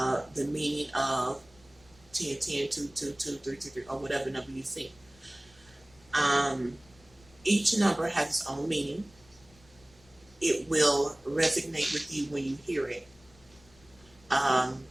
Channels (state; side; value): noise; left; rumble, 28 dB below the sound